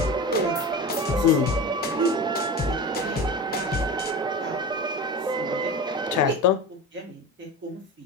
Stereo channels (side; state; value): both; normal; correlation 0.29